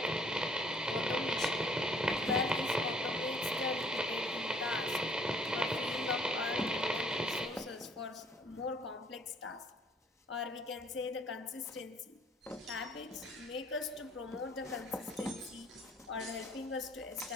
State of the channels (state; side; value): normal; both; correlation 0.59